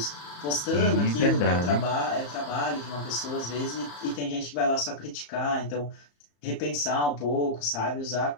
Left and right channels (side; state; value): right; late; 34 ms